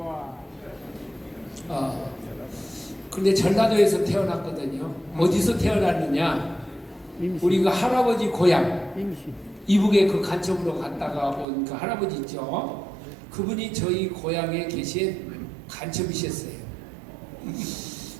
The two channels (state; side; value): drops out; left; at 11.5 s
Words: 근데 전라도에서 태어났거든요. 어디서 태어났느냐? 우리 그 할아버지 고향, 이북에 그 간첩으로 갔다가 온 그 할아버지 있죠? 그분이 저희 고향에 계신 간첩이셨어요.